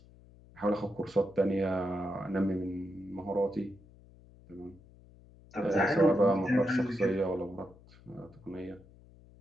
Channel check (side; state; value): left; noise; hum, 24 dB below the sound